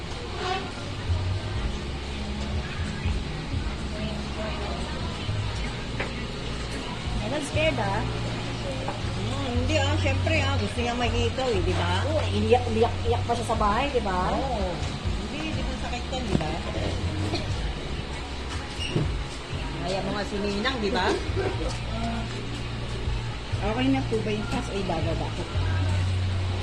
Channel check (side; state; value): both; identical; correlation 1.00